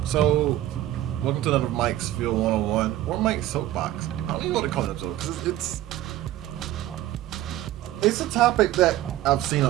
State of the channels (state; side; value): quieter; left; 14.1 dB